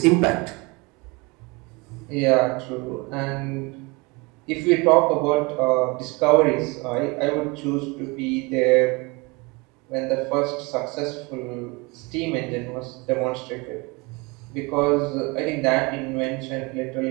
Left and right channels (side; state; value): left; quieter; 26.9 dB